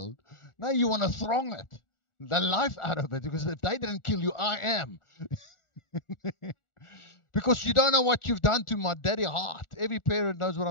Now you want to throng it, the life out of it, because if they didn't kill you, I am. Because you don't know what you've done to my daddy heart. Every parent knows what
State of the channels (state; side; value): late; right; 1.4 ms